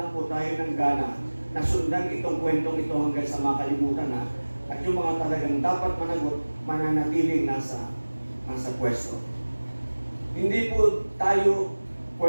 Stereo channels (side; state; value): both; inverted; correlation -1.00